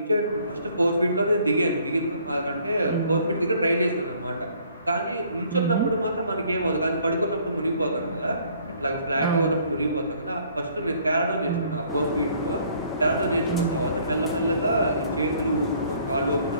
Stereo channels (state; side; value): inverted; both; correlation -0.60